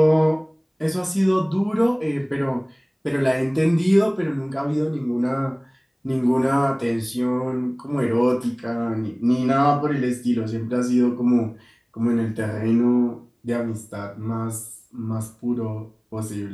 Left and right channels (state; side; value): identical; both; correlation 1.00